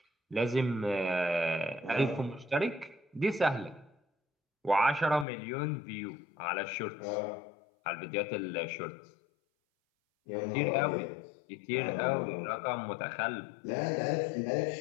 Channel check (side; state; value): right; drops out; at 5.2 s